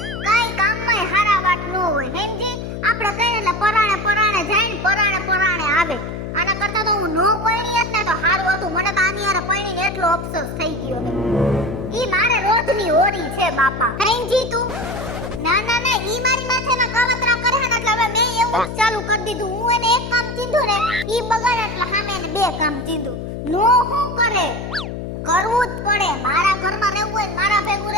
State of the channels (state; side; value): noise; left; hum, 7 dB below the sound